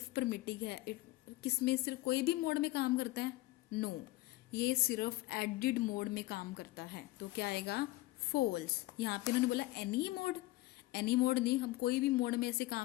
प्रिमिटिव है किसमें सिर्फ कोई भी मोड में काम करता है? नो, ये सिर्फ एडिड मोड में काम करता है. तो क्या आएगा? फॉल्स. यहाँ पे उन्होंने बोला एनी मोड नहीं, हम कोई भी मोड में ऐसे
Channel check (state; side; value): quieter; right; 18.8 dB